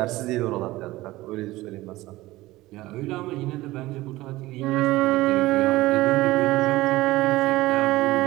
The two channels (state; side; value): quieter; left; 18.2 dB